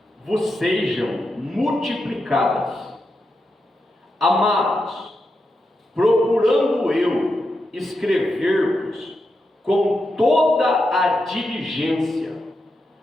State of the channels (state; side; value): normal; both; correlation 0.87